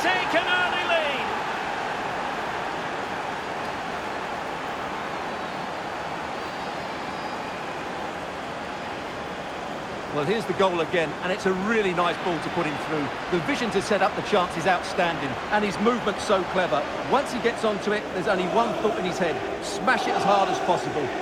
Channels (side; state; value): both; identical; correlation 1.00